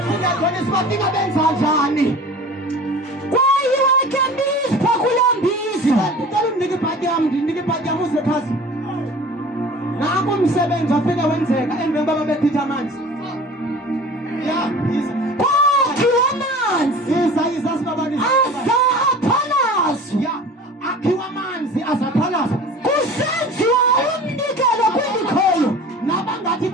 Funda khona sibafika benza njani kwayiwe kembizi phakulambizi ngicela unike ibhadi yami uze phansi nangu umsebenzi wafika wenzeka emveni baba bethitha amanzi kwakhiwa amanzi yiza sibabani azaphalazwa akhiwa amanzi azaphalazwa kusenziwa umnikelo kwindikhoyo nabangathi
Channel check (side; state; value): both; normal; correlation 0.41